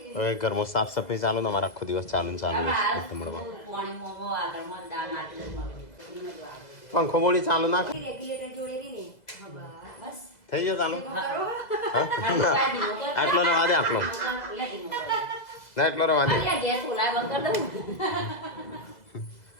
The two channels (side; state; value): right; late; 2.0 ms